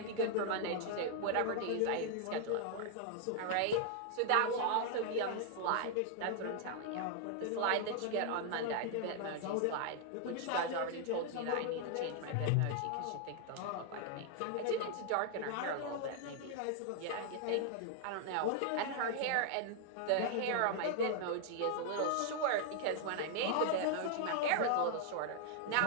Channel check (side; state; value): both; different; correlation 0.00